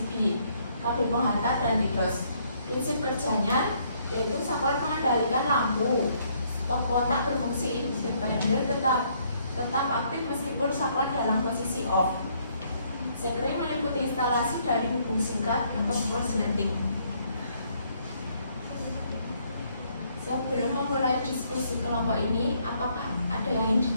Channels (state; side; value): inverted; both; correlation -0.68